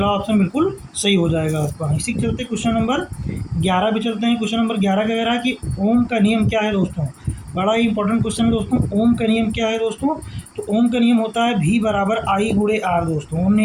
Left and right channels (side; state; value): both; identical; correlation 1.00